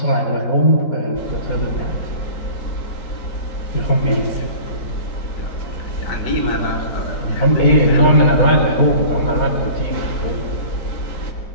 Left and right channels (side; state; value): right; late; 4.3 ms